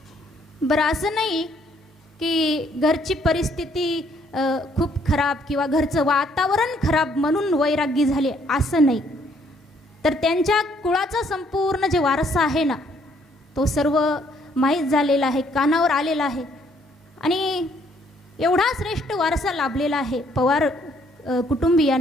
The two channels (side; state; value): both; normal; correlation 0.66